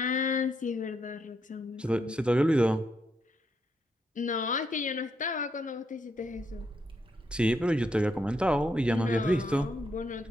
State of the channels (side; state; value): both; normal; correlation 0.78